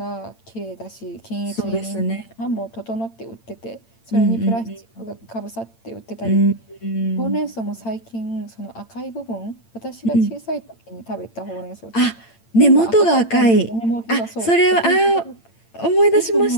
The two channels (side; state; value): right; late; 8.8 ms